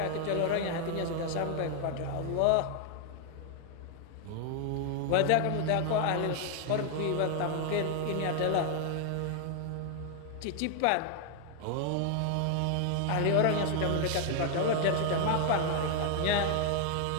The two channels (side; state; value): both; different; correlation 0.00